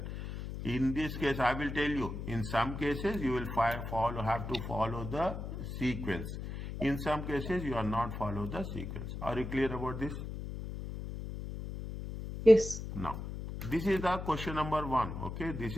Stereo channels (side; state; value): left; noise; hum, 7 dB below the sound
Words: In this case, I will tell you, in some cases, you will have to follow the sequence. In some cases, you are not follow the sequence. Are you clear about this? Yes. Now, this is the question number 1. Okay, this